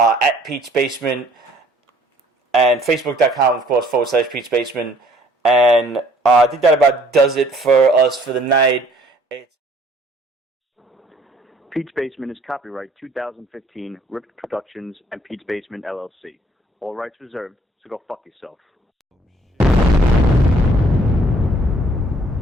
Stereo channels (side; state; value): both; normal; correlation 0.59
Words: Peach Basement, and Facebook.com, of course, /PeachBasement. And I think that about does it for us for the night. Peach Basement is copyright 2015, Ripped Productions and Peach Basement LLC. All rights reserved, so go fuck yourself.